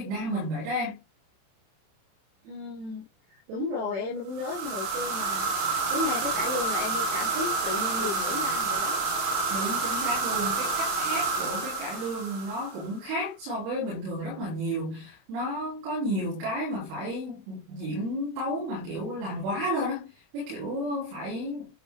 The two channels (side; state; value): left; late; 31 ms